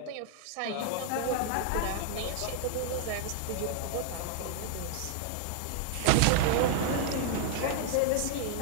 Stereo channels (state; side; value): different; both; correlation 0.00